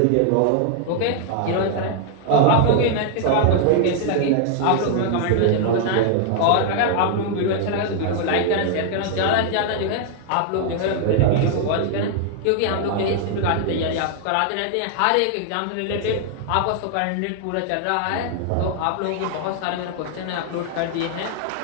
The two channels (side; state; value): both; different; correlation 0.00